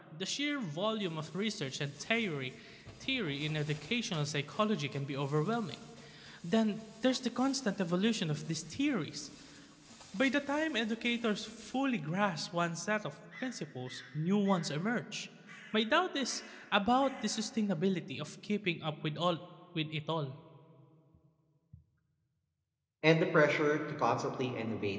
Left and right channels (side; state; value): both; identical; correlation 1.00